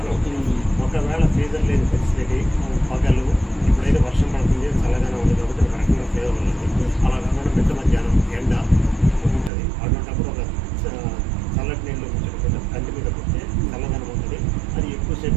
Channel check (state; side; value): drops out; left; at 9.5 s